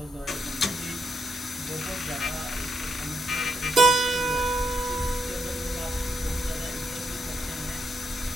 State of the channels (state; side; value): normal; both; correlation 0.79